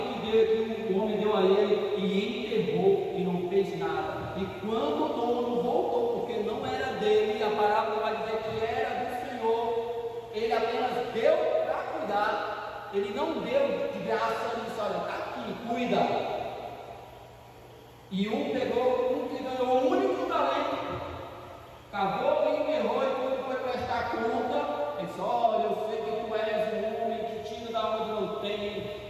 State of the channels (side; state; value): both; identical; correlation 1.00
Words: que o homem deu a ele e enterrou e não fez nada. E quando o dono voltou, porque não era dele, a parábola vai dizer que era do Senhor, ele apenas deu para cuidar. Ele não deu de graça e disse: olha, está aqui, cuida. E um que ganhou o único talento, cavou e enterrou, e quando foi prestar conta, ele disse: olha, eu sei que tu és um homem que tira da onde não tem,